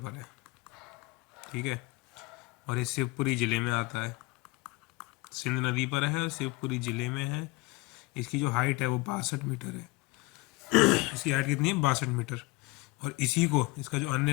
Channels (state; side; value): quieter; right; 23.1 dB